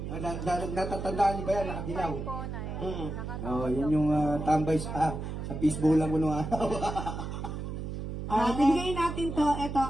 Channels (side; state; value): right; noise; hum, 6 dB below the sound